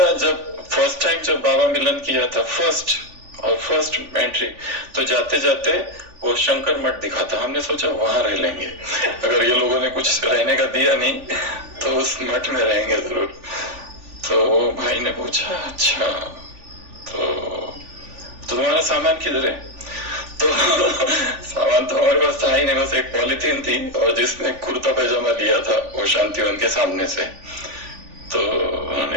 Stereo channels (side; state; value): left; late; 3.5 ms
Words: जब फर्स्ट टाइम जब बाबा मिलन किया था, फर्स्ट एंट्री, तो जाते जाते वो शंकर मठ दिखा था। हमने सोचा वहां रह लेंगे, अगर ये लोगों ने कुछ रहने का दिया नहीं तो उस मठ में रहेंगे जरूर। तो वो भाई ने पूछा अच्छा तो तुम्हारा सामान किधर है? तो सामान तो हमारे पास था ही नहीं, बस एक पॉलिथीन थी और जिसमें कुर्ता पैजामा लिया था वो शांतिवन के सामने से। तो